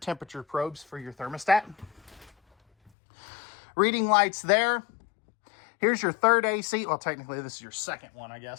probes for your thermostat. Reading lights there. Here's your third AC. Well, technically, this is your second one, I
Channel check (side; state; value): right; drops out; at 2.9 s